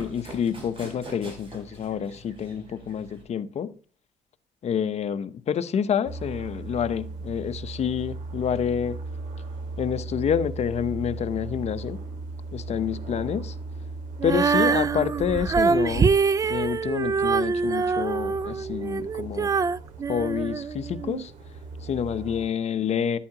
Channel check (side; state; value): both; normal; correlation 0.51